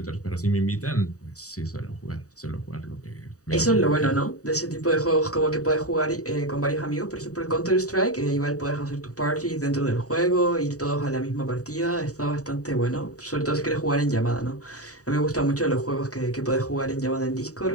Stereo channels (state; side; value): late; right; 0.66 ms